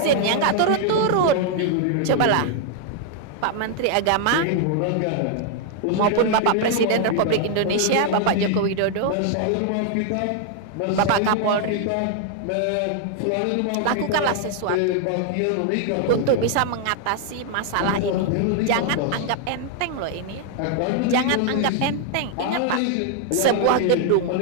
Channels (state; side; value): different; both; correlation 0.00